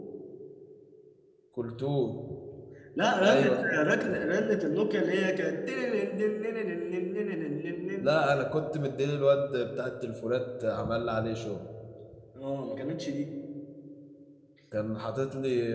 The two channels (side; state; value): both; identical; correlation 1.00